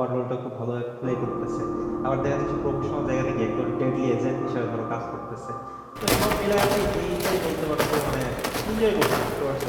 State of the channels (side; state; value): both; identical; correlation 1.00